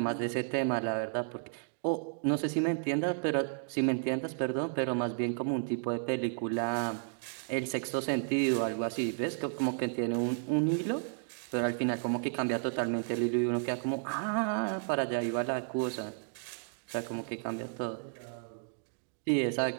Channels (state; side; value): silent; left; digital silence